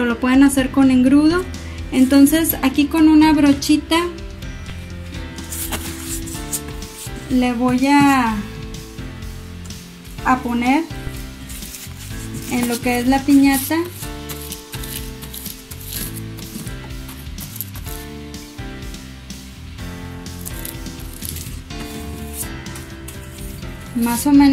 lo pueden hacer con engrudo. Entonces aquí con una brochita le voy a poner en lo que es la piñata más o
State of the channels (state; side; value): identical; both; correlation 1.00